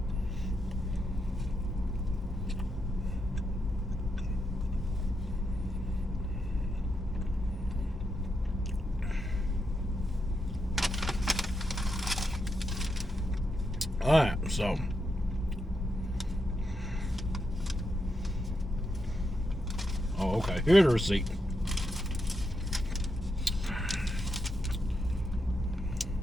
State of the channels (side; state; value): both; normal; correlation 0.83